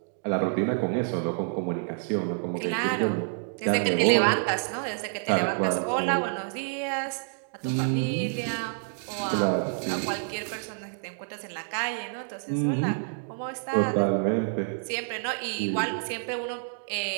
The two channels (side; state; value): left; silent; digital silence